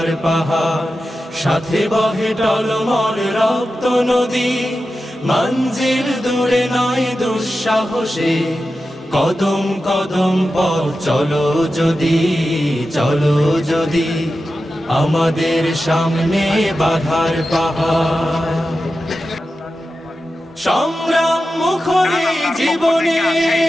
পাহাড়, সাথে বহে টলমল রক্ত নদী। মঞ্জিল দূরে নয় দুঃসাহসে, কদম কদম পথ চলো যদি, চলো যদি। আমাদের সামনে বাধার পাহাড়, সংগ্রাম মুখরে জীবনে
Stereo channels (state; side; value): normal; both; correlation 0.92